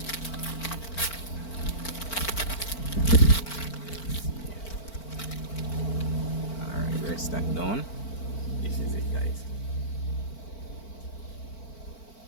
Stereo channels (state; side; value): late; right; 4.5 ms